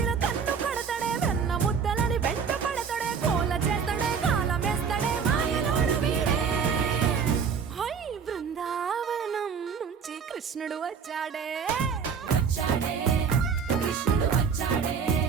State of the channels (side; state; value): left; quieter; 6.3 dB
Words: కన్ను కడతాడే వెన్న ముద్దలని వెంట పడతాడే కోల చేస్తాడే కాలమేస్తాడే మాయలోడు వీడే హై బృందావనం నుంచి కృష్ణుడు వచ్చాడే కృష్ణుడు వచ్చాడే